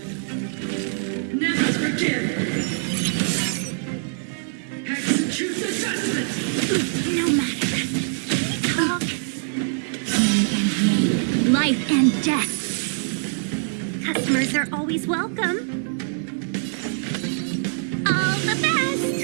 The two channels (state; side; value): silent; left; 63 dB below the other